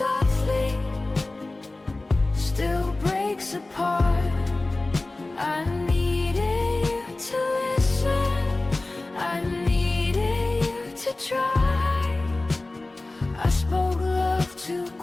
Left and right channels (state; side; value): quieter; right; 3.0 dB